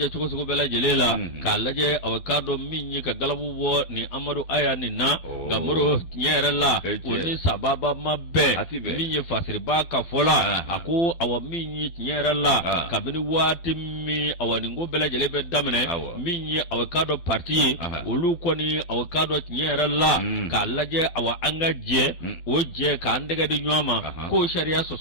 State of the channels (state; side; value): late; right; 12 ms